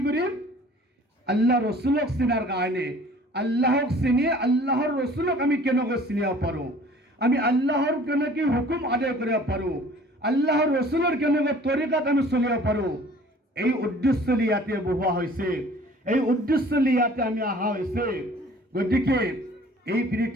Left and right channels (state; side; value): normal; both; correlation 0.50